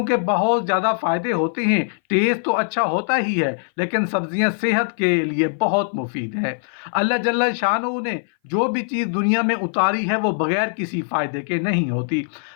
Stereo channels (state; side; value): silent; right; 60 dB below the other